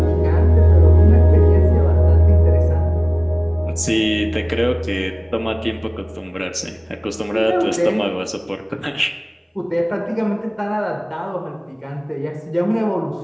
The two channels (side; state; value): both; identical; correlation 1.00